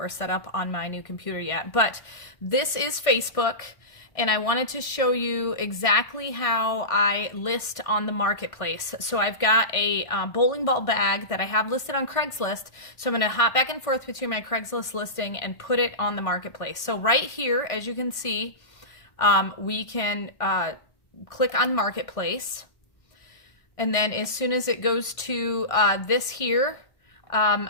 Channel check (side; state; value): right; late; 1.6 ms